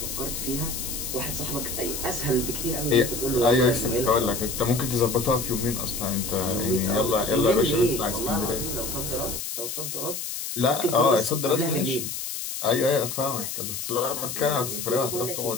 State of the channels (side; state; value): left; noise; hiss, 5 dB below the sound